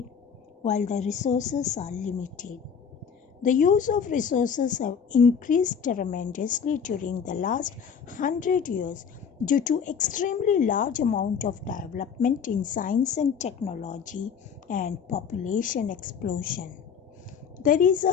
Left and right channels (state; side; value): quieter; right; 6.9 dB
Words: while the resources are limited. The use of resources have increased tremendously during the last 100 years due to extremely large amount of development in science and technology and population explosion. There is a